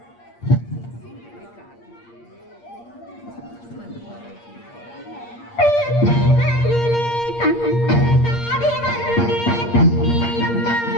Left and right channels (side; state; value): right; late; 8.6 ms